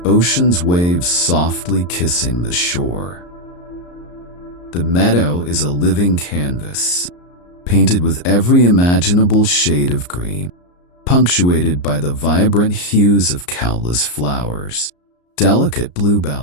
ocean's waves softly kissing the shore. The meadow is a living canvas, painted with every imaginable shade of green, punctuated by the vibrant hues of countless flowers. Delicate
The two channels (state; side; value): late; right; 34 ms